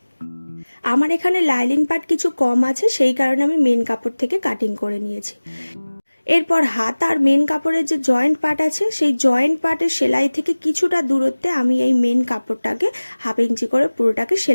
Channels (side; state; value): both; inverted; correlation -1.00